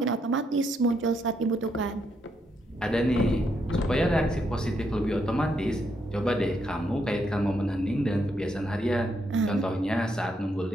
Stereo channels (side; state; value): both; normal; correlation 0.77